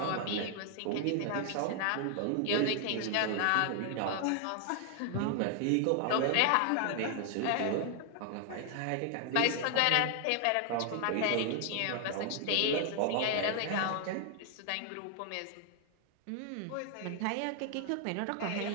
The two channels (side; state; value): both; different; correlation 0.00